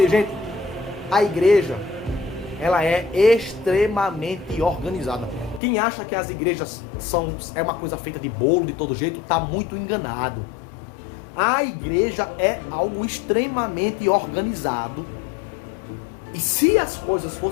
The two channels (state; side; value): drops out; right; at 5.6 s